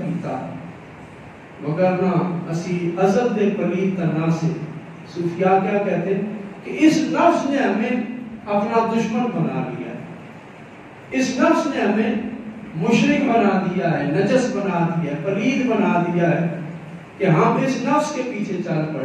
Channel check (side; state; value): both; identical; correlation 1.00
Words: مگر نہ اسی عزت دے پلیت تنا سے۔ صوفیاء کیا کہتے ہیں کہ اس نفس نے ہمیں اپنا دشمن بنا لیا ہے، اس نفس نے ہمیں مشرک بنا دیا ہے، نجس بنا دیا ہے، پلید بنا دیا ہے، کہ ہم اس نفس کے پیچھے چل